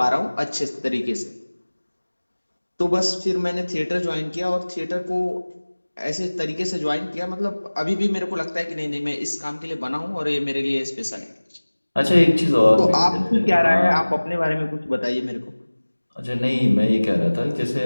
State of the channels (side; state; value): both; inverted; correlation -1.00